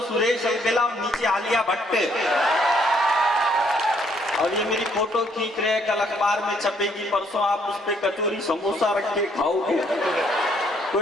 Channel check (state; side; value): normal; both; correlation 0.67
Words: सुरेश अलबेला और नीचे आलिया भट्ट। और ये मेरी फोटो खींच रहे हैं, कल अखबार में छपेगी, परसों आप उस पे कचौरी समोसा रख के खाओगे।